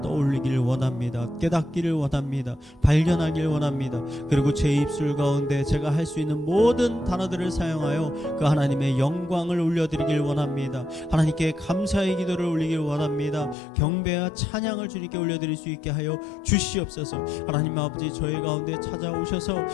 떠올리길 원합니다. 깨닫기를 원합니다. 발견하길 원합니다. 그리고 제 입술 가운데 제가 할 수 있는 모든 단어들을 사용하여 그 하나님의 영광을 올려드리길 원합니다. 하나님께 감사의 기도를 올리길 원합니다. 경배와 찬양을 주님께 올려드릴 수 있게 하여 주시옵소서. 하나님 아버지, 저희 가운데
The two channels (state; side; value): drops out; right; at 13.6 s